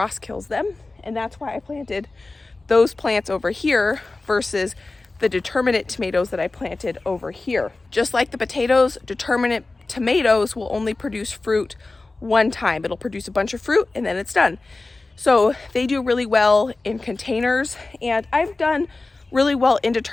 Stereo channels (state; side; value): quieter; right; 3.3 dB